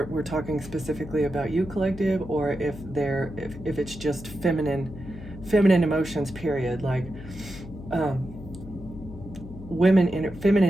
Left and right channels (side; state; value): left; noise; hum, 14 dB below the sound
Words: we're talking specifically about you, collective, or if it's just feminine emotions. Period. Like.